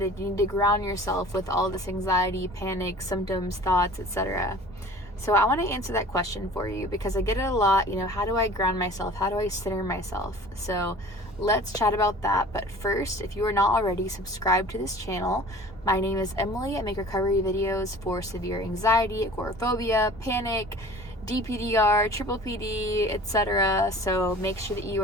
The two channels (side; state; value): both; normal; correlation 0.44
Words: You need to ground yourself with all this anxiety, panic, symptoms, thoughts, etc. So I want to answer that question for you because I get it a lot. How do I ground myself? How do I center myself? So let's chat about that. But first, if you are not already subscribed to this channel, my name is Emily. I make recovery videos for severe anxiety, agoraphobia, panic, DPDR, triple PD, etc. So make sure that you